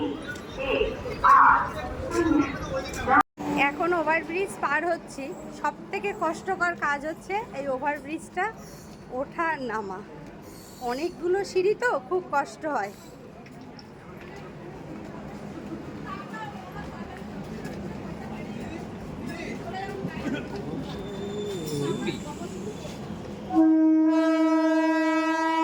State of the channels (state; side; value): identical; both; correlation 1.00